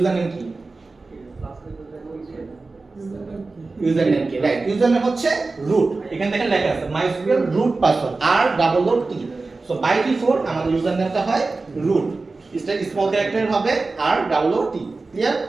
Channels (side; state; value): left; quieter; 3.7 dB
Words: নেম কি? ইউজার নেম কি? রাইট, ইউজার নেম হচ্ছে রুট, এখানে দেখেন লেখা আছে MySQL root password R+T। So by default আমাদের ইউজার নেমটা হয় রুট, এটা স্মল ক্যারেক্টার হবে R+T, clear?